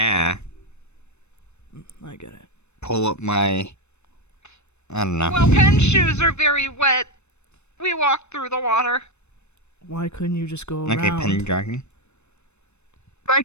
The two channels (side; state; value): right; late; 0.81 ms